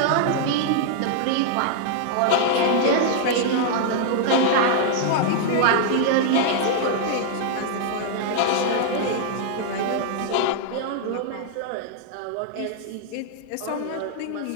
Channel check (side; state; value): both; different; correlation -0.01